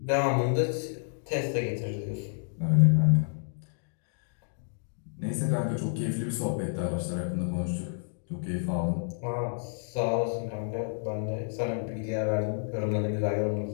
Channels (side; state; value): right; silent; digital silence